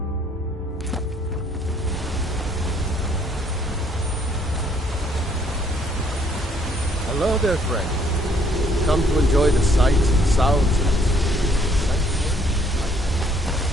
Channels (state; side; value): normal; both; correlation 0.65